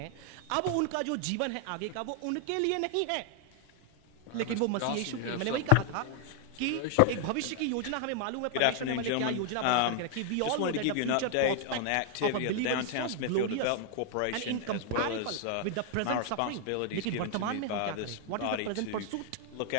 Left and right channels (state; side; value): different; both; correlation 0.00